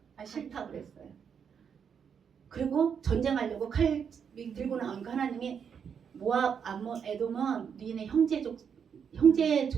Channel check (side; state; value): left; quieter; 7.2 dB